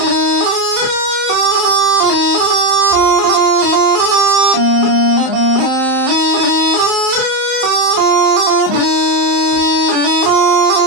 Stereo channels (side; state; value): left; late; 30 ms